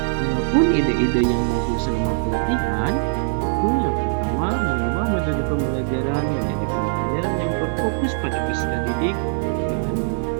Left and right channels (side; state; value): left; silent; digital silence